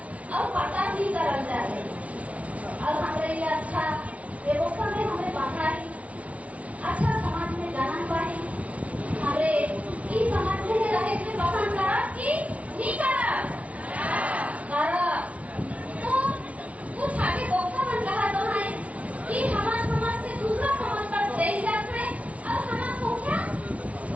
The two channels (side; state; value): left; late; 0.066 ms